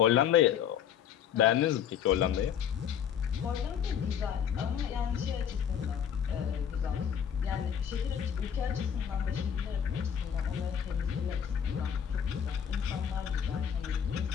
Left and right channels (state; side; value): quieter; right; 8.5 dB